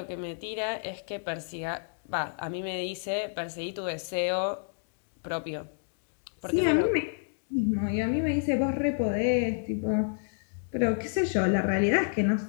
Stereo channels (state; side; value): silent; right; digital silence